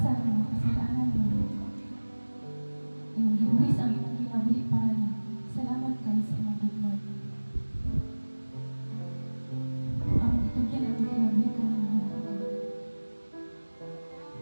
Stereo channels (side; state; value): both; inverted; correlation -1.00